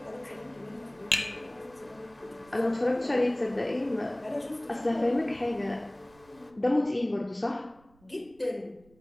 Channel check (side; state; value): right; noise; rumble, 29 dB below the sound